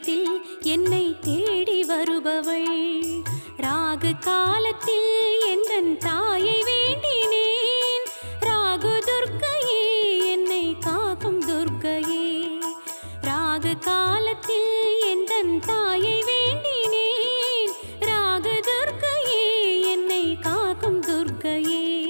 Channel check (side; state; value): both; inverted; correlation -1.00